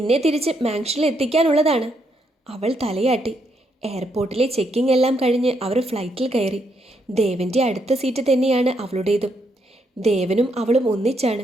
തിരിച്ച് മാൻഷനിൽ എത്തിക്കാനുള്ളതാണ്. അവൾ തലയാട്ടി. എയർപോർട്ടിലെ ചെക്കിംഗ് എല്ലാം കഴിഞ്ഞ് അവർ ഫ്ലൈറ്റിൽ കയറി. ദേവൻ്റെ അടുത്ത സീറ്റ് തന്നെയാണ് അവളുടേതും. ദേവനും അവളും ഒന്നിച്ചാണ്.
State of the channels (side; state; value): both; normal; correlation 0.76